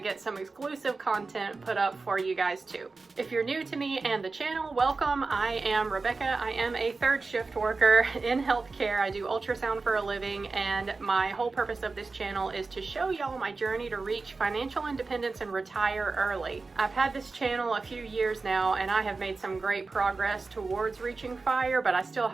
some exclusive content put up for you guys too. If you're new to me and the channel, welcome. I am Rebecca. I am a third shift worker in healthcare. I do ultrasound for a living, and my whole purpose of this channel is to show y'all my journey to reach financial independence and retire early. I've had this channel a few years now, and I have made some great progress towards reaching FIRE, but I still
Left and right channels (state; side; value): quieter; left; 3.9 dB